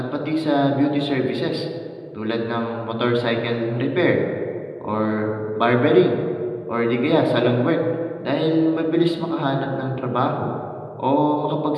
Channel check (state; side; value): identical; both; correlation 1.00